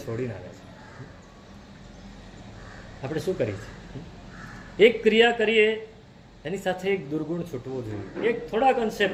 છોડીને આવ્યા છો. આપણે શું કરીએ છીએ? એક ક્રિયા કરીએ એની સાથે એક દુર્ગુણ છૂટવો જોઈએ, એક થોડાક અંશે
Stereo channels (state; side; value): identical; both; correlation 1.00